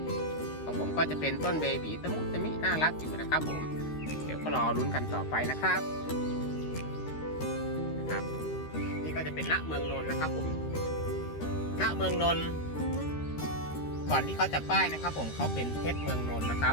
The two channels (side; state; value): right; late; 13 ms